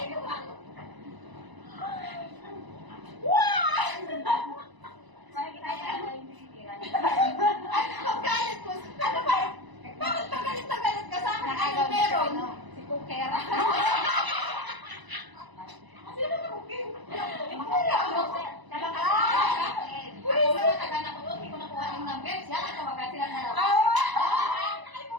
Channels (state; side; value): late; left; 1.0 ms